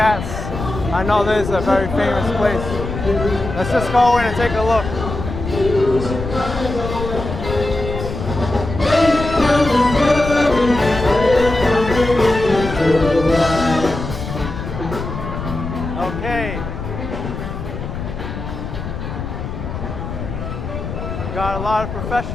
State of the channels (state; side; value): noise; left; rumble, 6 dB below the sound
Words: I know this is a very famous place. Let's just go in and take a look. Okay. Got a lot of